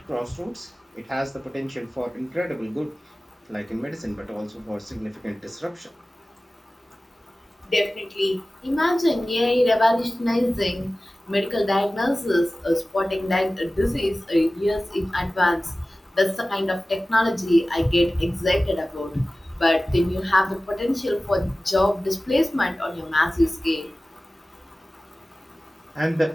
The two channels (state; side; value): normal; both; correlation 0.96